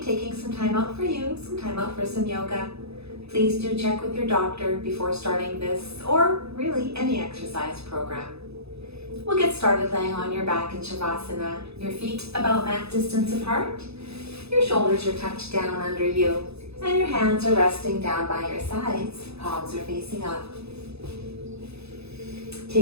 taking some time out for you, some time out for some yoga. Please do check with your doctor before starting this, or really any exercise program. We'll get started laying on your back in Shavasana, your feet about mat distance apart. Your shoulders are tucked down under you, and your hands are resting down by your sides. Palms are facing up.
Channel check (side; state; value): left; late; 0.79 ms